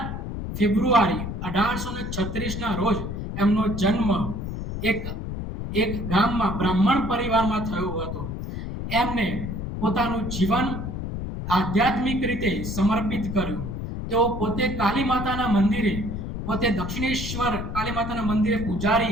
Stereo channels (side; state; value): left; noise; rumble, 5 dB below the sound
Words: ફેબ્રુઆરી 1836ના રોજ એમનો જન્મ એક ગામમાં બ્રાહ્મણ પરિવારમાં થયો હતો. એમને પોતાનું જીવન આધ્યાત્મિક રીતે સમર્પિત કર્યું. તેઓ પોતે કાલી માતાના મંદિરે, પોતે દક્ષિણેશ્વર કાલી માતાના મંદિરે